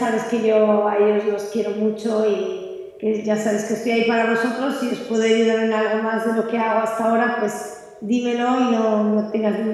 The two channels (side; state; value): both; identical; correlation 1.00